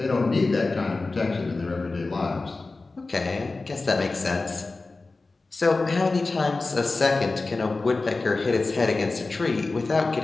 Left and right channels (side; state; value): right; quieter; 3.6 dB